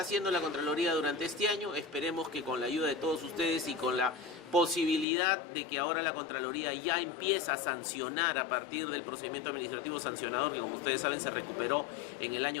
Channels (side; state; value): right; drops out; at 5.1 s